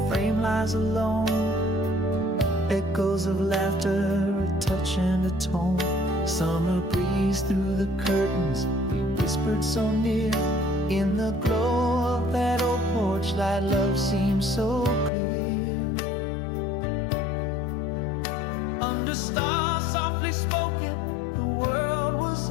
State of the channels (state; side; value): drops out; right; at 15.1 s